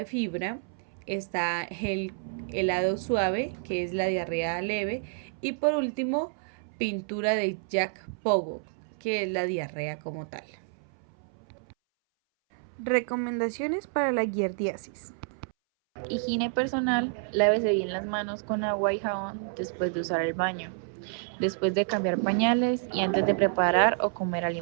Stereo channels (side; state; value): left; silent; 59 dB below the other